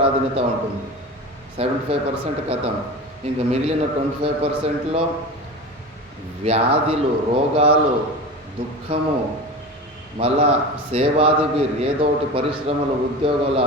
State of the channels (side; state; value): both; normal; correlation 0.29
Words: ఉంటుంది. 75% కథం. ఇంకా మిగిలిన 25%లో వ్యాధులు, రోగాలు, దుఃఖము, మళ్ళా సేవాదివి ఏదో ఒకటి పరిశ్రమలు, ఉద్యోగాలు